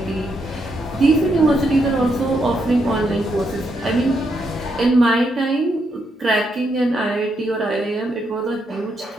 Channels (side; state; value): both; normal; correlation 0.79